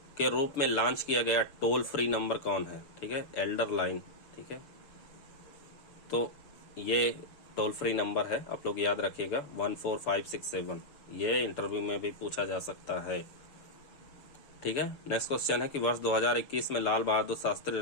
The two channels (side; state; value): right; late; 6.9 ms